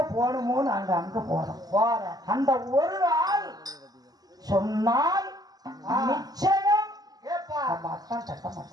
போகணுமோ நாங்க அங்க போறோம். அந்த ஒரு ஆள் சொன்னால் நிச்சயம் அத்தான்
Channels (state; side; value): late; left; 0.19 ms